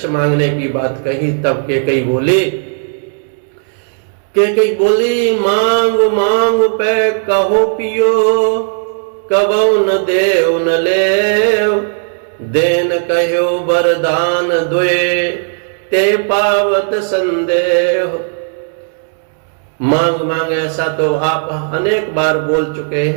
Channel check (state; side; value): silent; left; digital silence